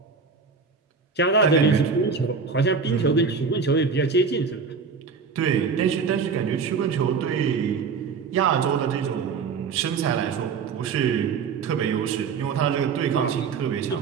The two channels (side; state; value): left; quieter; 5.4 dB